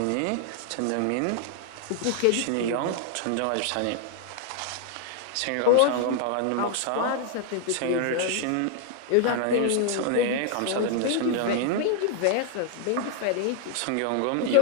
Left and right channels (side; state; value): both; different; correlation 0.00